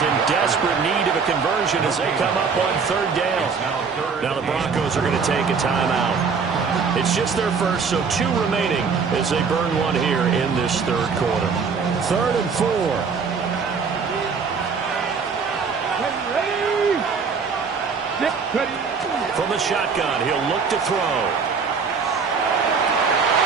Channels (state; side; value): quieter; left; 5.5 dB